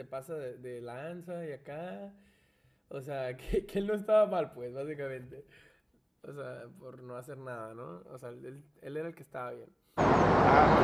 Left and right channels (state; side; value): identical; both; correlation 1.00